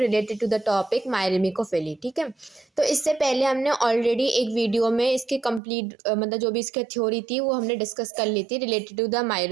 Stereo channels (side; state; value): left; drops out; at 5.6 s